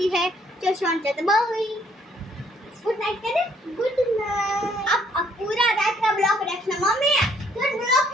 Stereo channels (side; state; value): both; normal; correlation 0.65